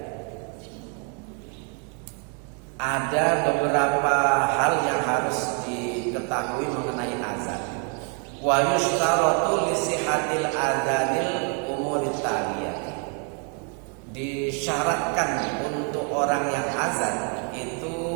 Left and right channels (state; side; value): quieter; left; 37.4 dB